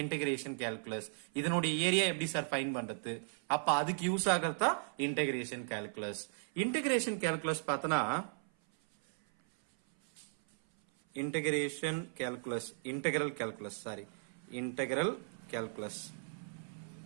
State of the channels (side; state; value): left; silent; 53 dB below the other